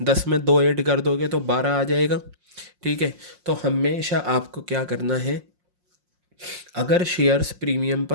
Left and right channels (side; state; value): left; late; 5.6 ms